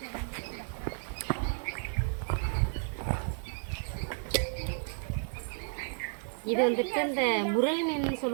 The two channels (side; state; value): left; silent; 56 dB below the other